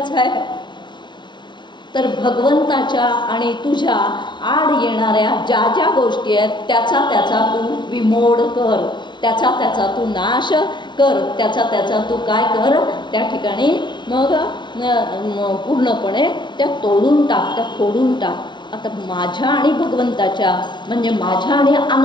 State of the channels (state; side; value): late; right; 0.22 ms